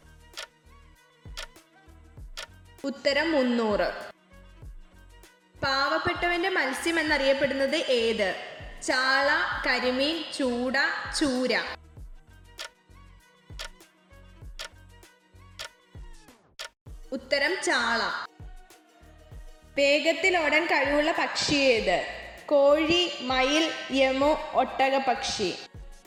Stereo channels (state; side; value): identical; both; correlation 1.00